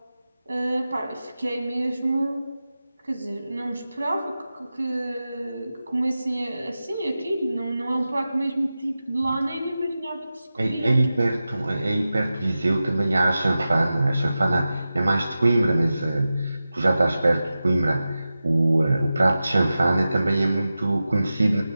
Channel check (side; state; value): both; inverted; correlation -0.94